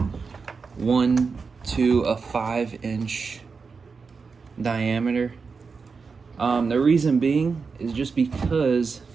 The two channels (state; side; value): quieter; left; 5.0 dB